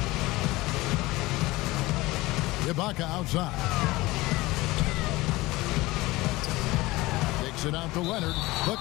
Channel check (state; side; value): quieter; right; 20.1 dB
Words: Ibaka outside. It out to Leonard. The